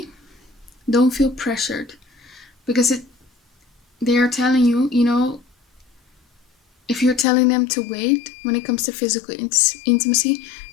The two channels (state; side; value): drops out; right; at 7.2 s